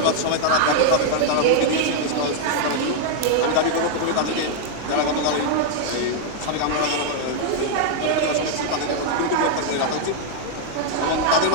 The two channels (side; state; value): both; different; correlation 0.00